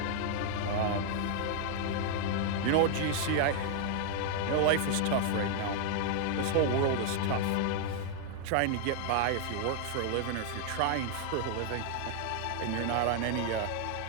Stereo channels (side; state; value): both; different; correlation 0.00